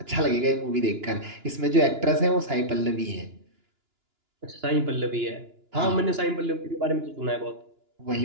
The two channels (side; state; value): left; late; 2.9 ms